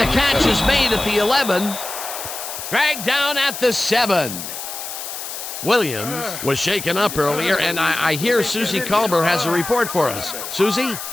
the catch is made at the 11. Dragged down at the 7. Williams was shaken up earlier, and I hear Susie Culber has a report for us. Susie?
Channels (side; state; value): left; noise; hiss, 8 dB below the sound